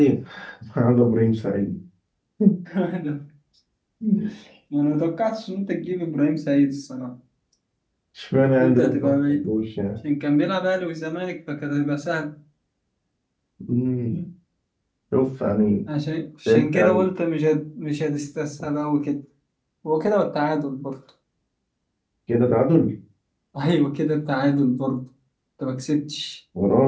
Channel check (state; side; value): identical; both; correlation 1.00